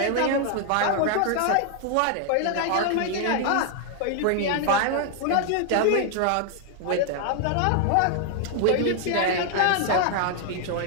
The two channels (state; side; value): different; both; correlation 0.00